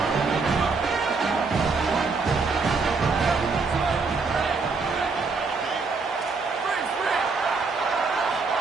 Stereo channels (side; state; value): left; quieter; 4.4 dB